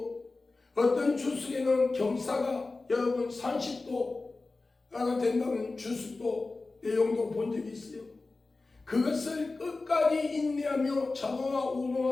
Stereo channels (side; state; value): right; quieter; 3.5 dB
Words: 어떤 주석에는 경사가 여러분 30도가 된다는 주석도 내용도 본 적이 있어요. 그것을 끝까지 인내하며 자노와